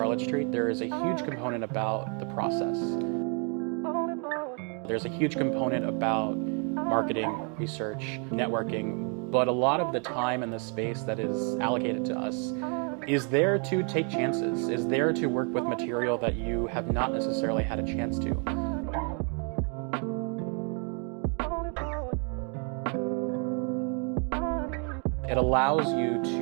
Street, there is a huge component about the process. There's a huge component about marketing, research, networking, but a lot of the time and the space that is allocated to us is there to take chances, is there to work with material that you have not necessarily had a chance to. It allows you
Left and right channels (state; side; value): quieter; left; 38.8 dB